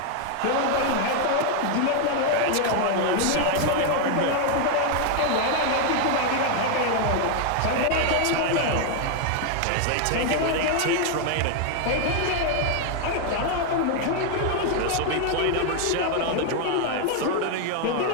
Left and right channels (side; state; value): both; different; correlation 0.00